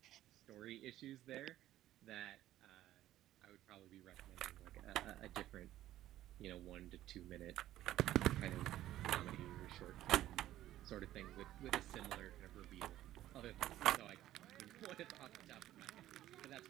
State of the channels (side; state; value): left; quieter; 13.7 dB